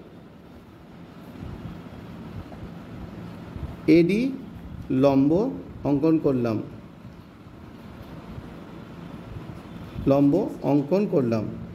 AD লম্ব অঙ্কন করলাম,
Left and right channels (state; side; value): identical; both; correlation 1.00